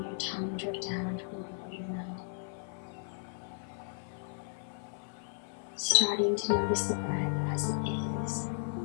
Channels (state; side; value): silent; right; 55 dB below the other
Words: your tongue drift down toward your mouth. Starting to notice the breath as it is.